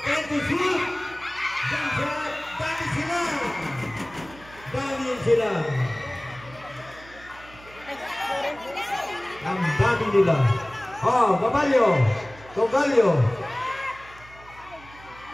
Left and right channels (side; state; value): right; noise; hum, 21 dB below the sound